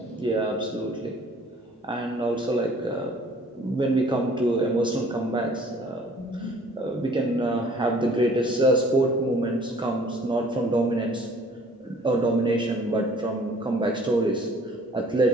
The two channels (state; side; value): normal; both; correlation 0.54